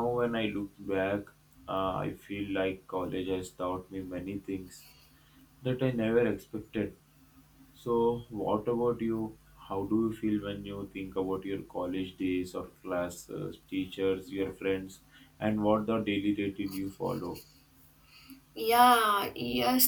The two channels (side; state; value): both; identical; correlation 1.00